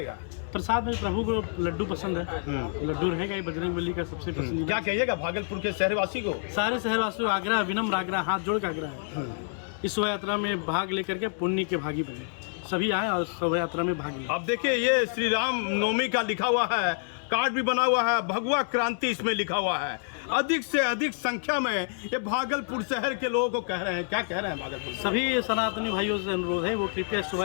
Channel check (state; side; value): silent; right; 59 dB below the other